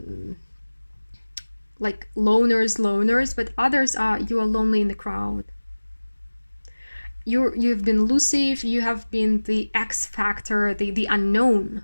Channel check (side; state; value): both; inverted; correlation -1.00